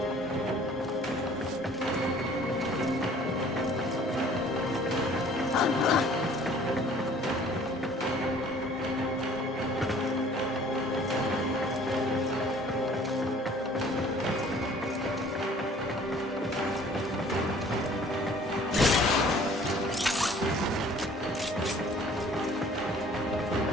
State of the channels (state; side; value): normal; both; correlation 0.53